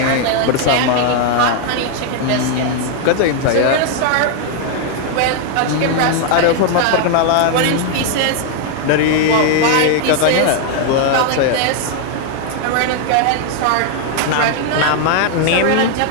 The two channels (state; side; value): different; both; correlation 0.00